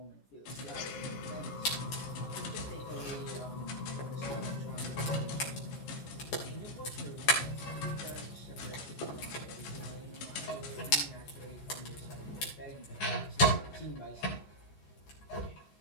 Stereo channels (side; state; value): right; late; 14 ms